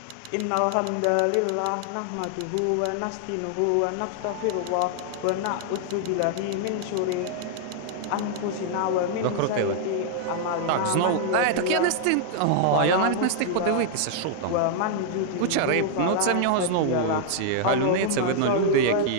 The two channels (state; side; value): different; both; correlation -0.01